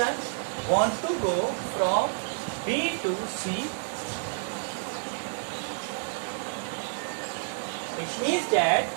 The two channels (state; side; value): silent; left; digital silence